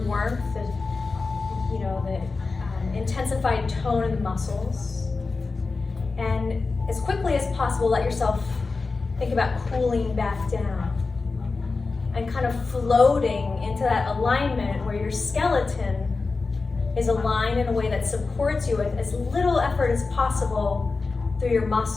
the intensified tone of the muscles. And as quickly as possible, let yourself think about cooling back down and kind of floating into that alignment where your skeleton is aligned in a way that supports you with as little effort as possible through your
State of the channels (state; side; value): quieter; right; 4.0 dB